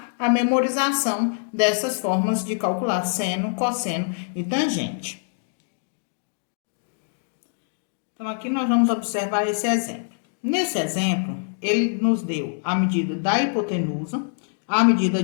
a memorização dessas formas de calcular seno, cosseno e tangente. Então, aqui nós vamos observar esse exemplo. Nesse exemplo, ele nos deu a medida da hipotenusa, a medida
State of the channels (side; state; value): right; silent; digital silence